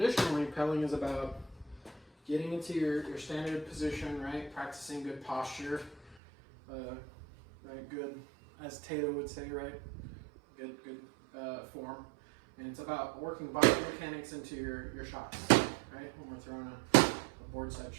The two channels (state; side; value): drops out; left; at 6.2 s